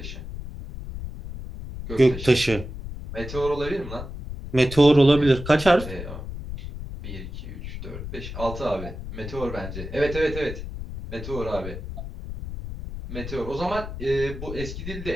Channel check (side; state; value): left; noise; rumble, 9 dB below the sound